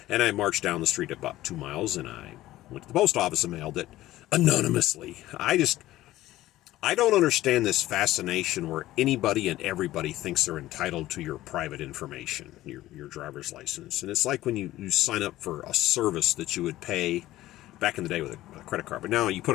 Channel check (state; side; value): quieter; right; 15.5 dB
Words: And I marched down the street about 2 miles, and I went to the post office and mailed it anonymously. I don't understand this fascination where anybody and everybody thinks they're entitled to your private information, your driver's license. And it's like when you sign up for a service that you would pay back in the day with a credit card. But now you put